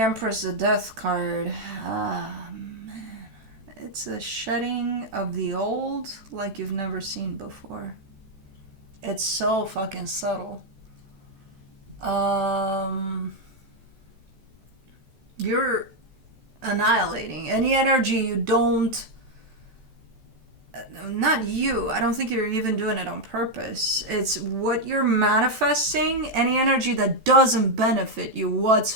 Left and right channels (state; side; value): late; left; 13 ms